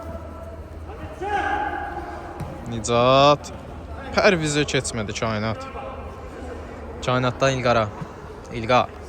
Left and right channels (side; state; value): both; identical; correlation 1.00